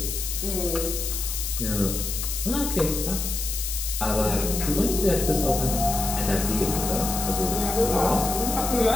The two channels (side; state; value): left; noise; hiss, 4 dB below the sound